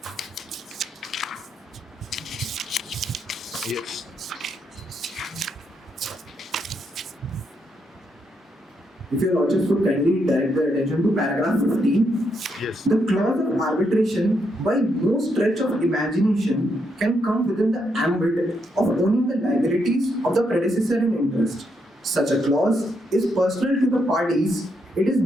Yes. If Your Lordships would kindly direct the attention to paragraph 15. Yes. The clause of arbitration, by no stretch of imagination, can come within the ambit of owning the liabilities of the predecessor in interest. Such a clause is personal to the parties. It is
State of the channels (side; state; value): both; normal; correlation 0.78